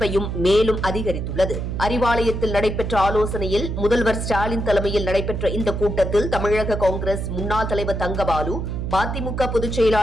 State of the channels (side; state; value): right; noise; hum, 3 dB below the sound